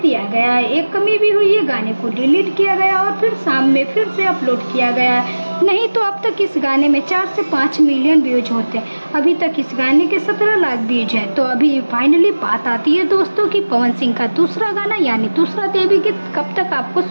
दिया गया है। एक कमी भी हुई है, गाने को डिलीट किया गया और फिर शाम में फिर से अपलोड किया गया है। नहीं तो अब तक इस गाने में 4 से 5 मिलियन व्यूज होते हैं। अभी तक इस गाने के 17 लाख व्यूज हैं। तो अभी फाइनली बात आती है दोस्तों कि पवन सिंह का दूसरा गाना यानी दूसरा देवी गीत कब तक आपको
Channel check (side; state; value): both; inverted; correlation -1.00